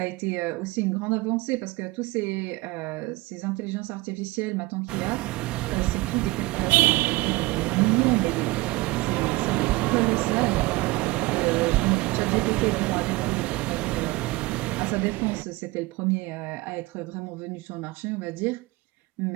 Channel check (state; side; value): quieter; left; 21.3 dB